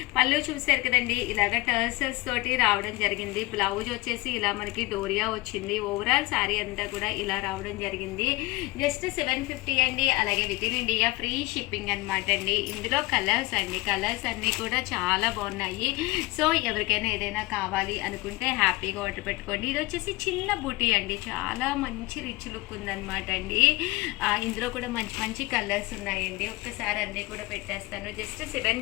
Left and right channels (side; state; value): right; quieter; 21.8 dB